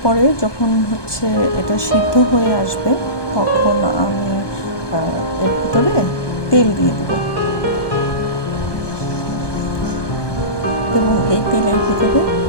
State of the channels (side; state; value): right; late; 1.2 ms